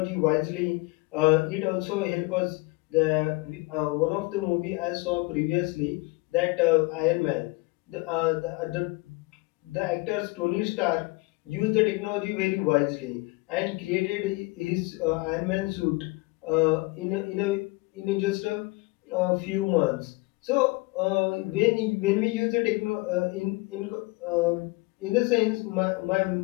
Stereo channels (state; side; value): quieter; right; 24.0 dB